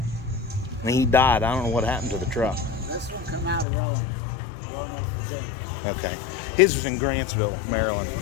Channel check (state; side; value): drops out; right; at 3.7 s